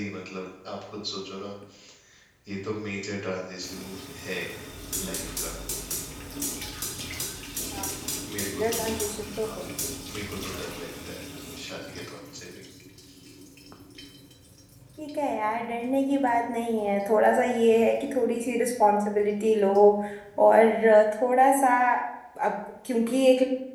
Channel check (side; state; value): both; identical; correlation 1.00